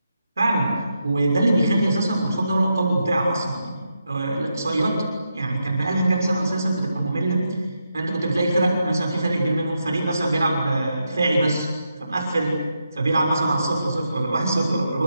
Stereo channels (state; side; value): inverted; both; correlation -0.84